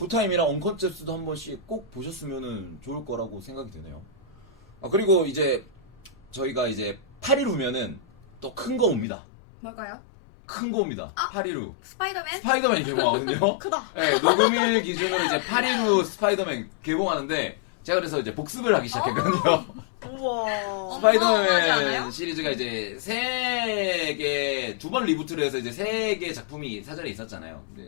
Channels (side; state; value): right; drops out; at 9.1 s